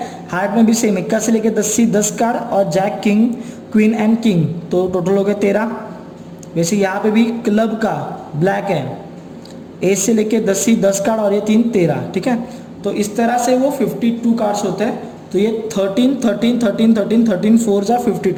हार्ट में भी सेम इक्का से लेके 10C 10 कार्ड और jack, king, queen and king, तो टोटल हो गए 13. वैसे यहाँ पे भी क्लब का ब्लैक है, ए से लेके 10C 10 कार्ड और ये 3 13. ठीक है, तो इस तरह से वो 52 कार्ड्स होते हैं. तो ये 13 13 13 13 13 4 जा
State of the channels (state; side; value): identical; both; correlation 1.00